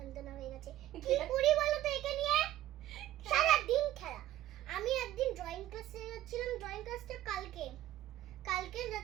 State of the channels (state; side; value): quieter; left; 14.0 dB